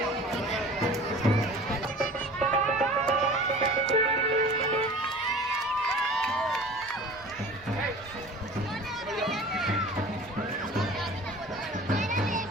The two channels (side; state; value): both; normal; correlation 0.41